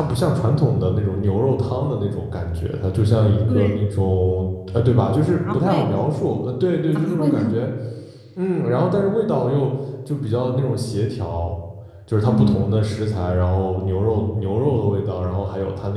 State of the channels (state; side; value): identical; both; correlation 1.00